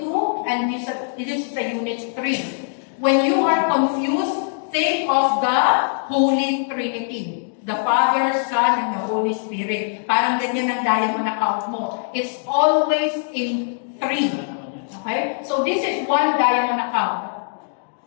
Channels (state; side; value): silent; right; digital silence